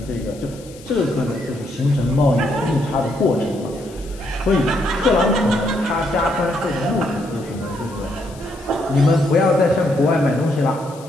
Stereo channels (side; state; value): left; noise; hiss, 22 dB below the sound